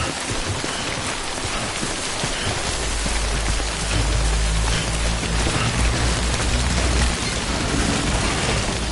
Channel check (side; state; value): both; identical; correlation 1.00